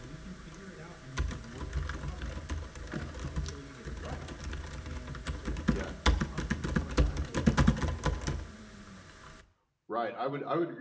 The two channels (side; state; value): both; identical; correlation 1.00